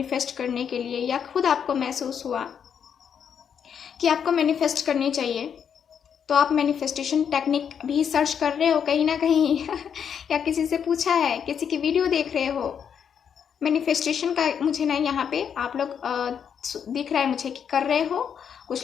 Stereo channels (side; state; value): right; quieter; 7.7 dB